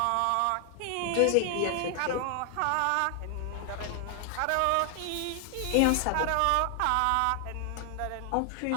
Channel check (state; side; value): different; both; correlation 0.00